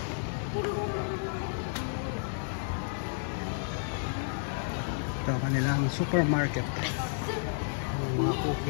Ito kanilang supermarket. Mga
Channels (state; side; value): silent; right; 57 dB below the other